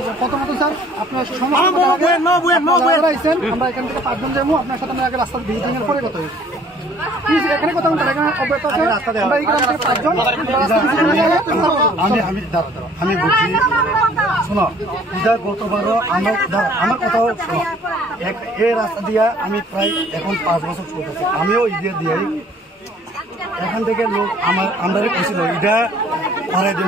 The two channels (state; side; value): normal; both; correlation 0.56